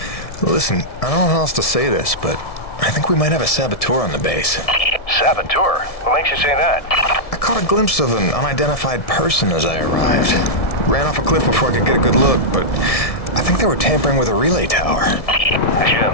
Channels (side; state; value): right; late; 1.7 ms